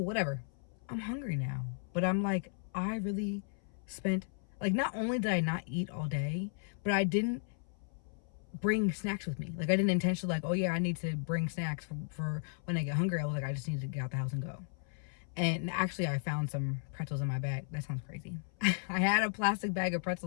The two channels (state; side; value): silent; right; 54 dB below the other